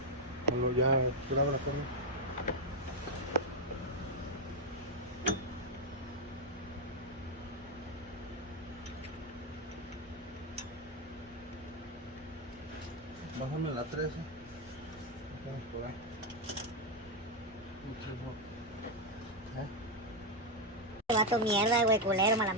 Hello, ya, grábala conmigo. Bájame la 13. Vamos por ahí. Vato mierda, güey, culero, mal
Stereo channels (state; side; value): normal; both; correlation 0.02